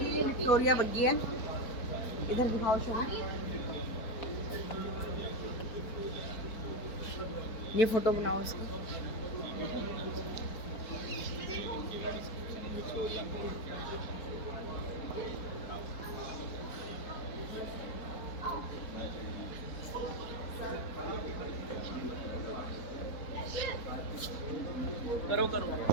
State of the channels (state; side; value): late; right; 4.1 ms